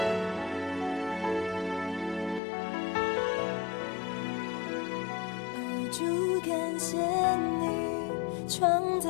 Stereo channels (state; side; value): drops out; right; at 2.4 s